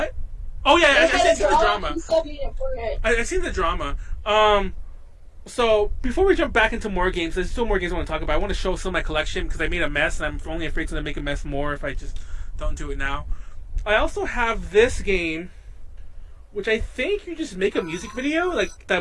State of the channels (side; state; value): both; identical; correlation 1.00